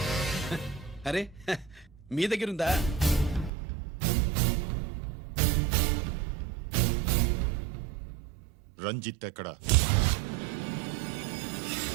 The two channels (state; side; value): drops out; left; at 3.5 s